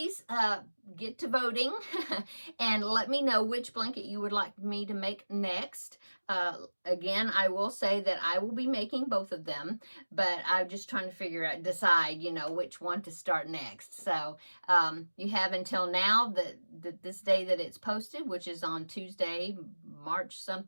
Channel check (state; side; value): inverted; both; correlation -1.00